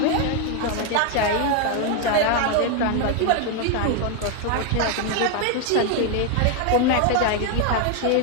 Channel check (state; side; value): different; both; correlation 0.01